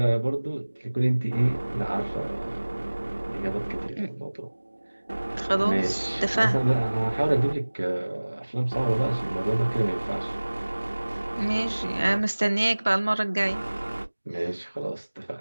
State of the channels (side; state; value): both; inverted; correlation -1.00